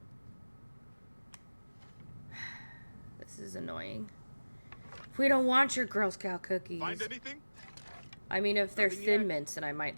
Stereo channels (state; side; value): inverted; both; correlation -1.00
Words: This is annoying. We don't want your Girl Scout cookies. Find anything? I mean, if they're Nothing Thin yet? Mints, then I might